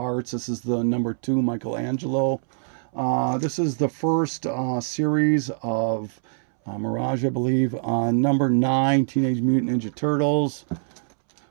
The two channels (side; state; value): left; silent; 63 dB below the other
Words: This is the number 2 Michelangelo. This is the first series of Mirage, I believe. Number 9, Teenage Mutant Ninja Turtles.